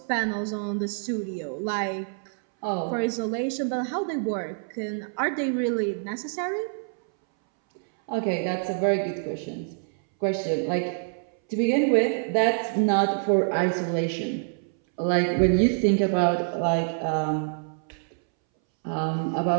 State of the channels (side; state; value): left; silent; 61 dB below the other